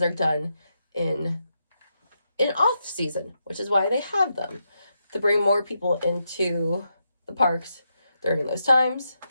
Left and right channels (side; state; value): both; inverted; correlation -0.83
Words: are done in off season, which is why they have them, to bring more people into the parks during those times.